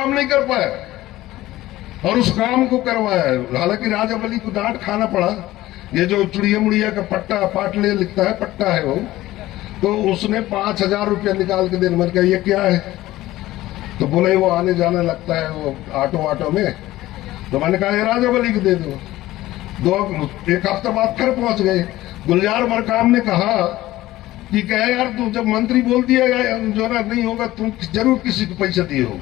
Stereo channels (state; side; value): quieter; right; 16.3 dB